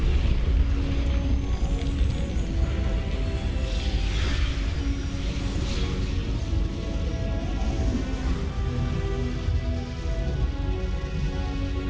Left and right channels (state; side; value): identical; both; correlation 1.00